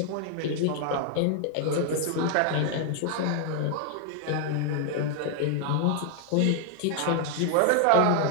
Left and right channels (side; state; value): both; different; correlation 0.00